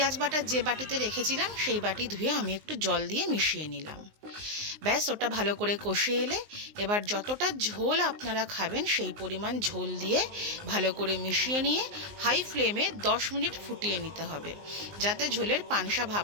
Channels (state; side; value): late; left; 19 ms